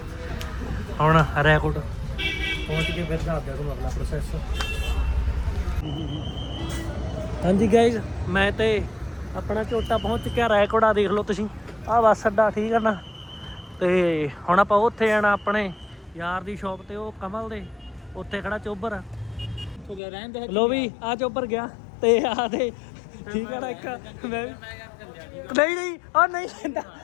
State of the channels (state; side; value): drops out; right; at 20.0 s